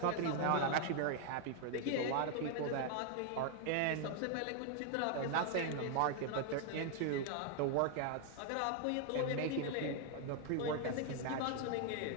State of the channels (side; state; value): both; different; correlation 0.00